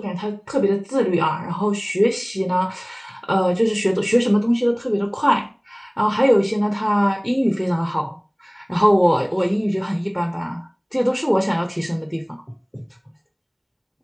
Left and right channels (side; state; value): both; identical; correlation 1.00